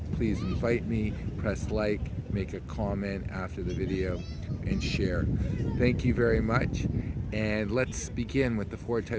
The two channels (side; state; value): both; identical; correlation 1.00